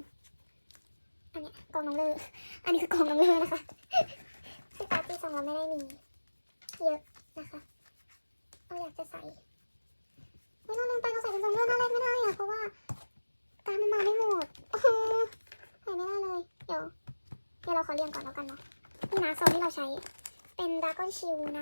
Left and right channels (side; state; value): both; inverted; correlation -1.00